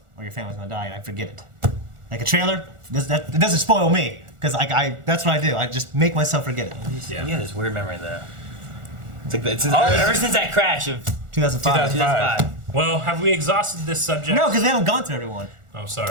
or your family's gonna die, and I forget it. like a trailer, it doesn't spoil me because that's what I do. I just make myself forget it. Yeah, this weird memory though. It's like ever since that crash of 2005. Well, have we exhausted this subject? No, because they haven't gone through everyone. Oh,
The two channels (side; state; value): left; late; 1.4 ms